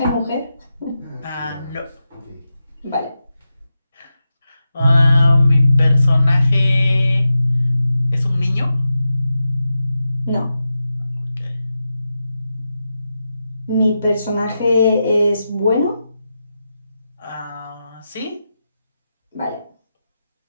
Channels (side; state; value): both; inverted; correlation -0.89